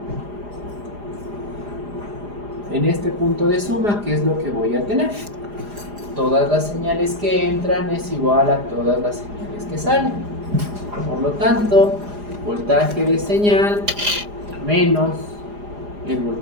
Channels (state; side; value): late; left; 4.9 ms